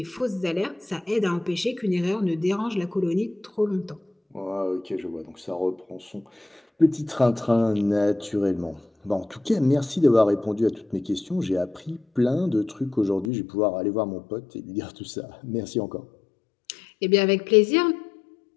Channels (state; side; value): drops out; right; at 13.3 s